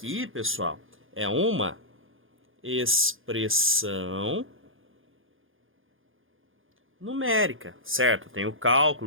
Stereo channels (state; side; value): late; left; 0.59 ms